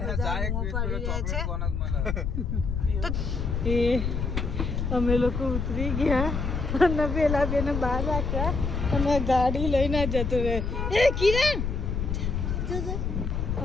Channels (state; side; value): noise; left; rumble, 1 dB below the sound